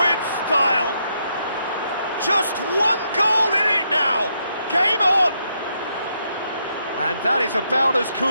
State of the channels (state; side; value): inverted; both; correlation -0.77